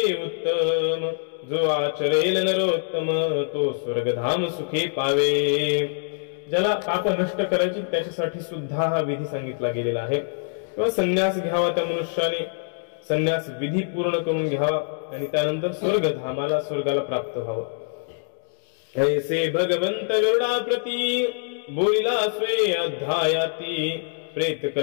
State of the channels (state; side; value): silent; right; digital silence